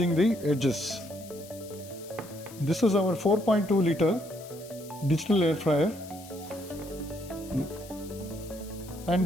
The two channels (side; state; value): left; noise; hiss, 19 dB below the sound